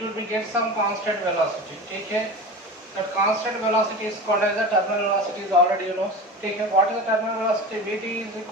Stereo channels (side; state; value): both; normal; correlation 0.31